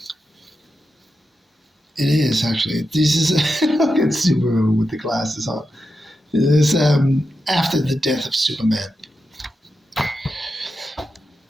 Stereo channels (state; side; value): normal; both; correlation 0.89